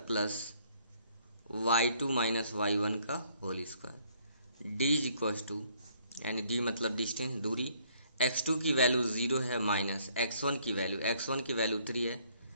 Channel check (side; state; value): both; inverted; correlation -0.64